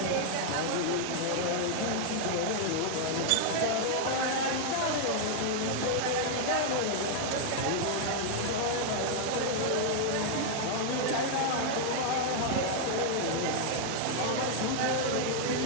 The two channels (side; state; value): both; different; correlation 0.00